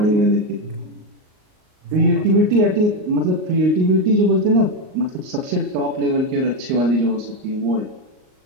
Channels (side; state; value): left; late; 38 ms